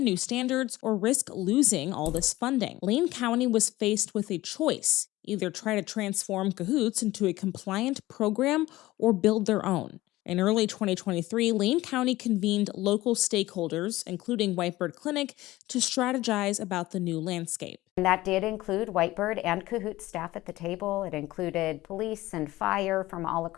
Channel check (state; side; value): quieter; right; 17.6 dB